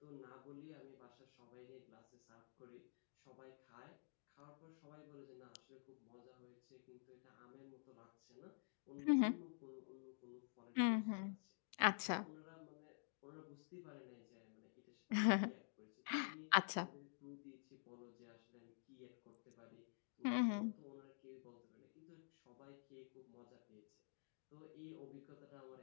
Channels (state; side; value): silent; right; digital silence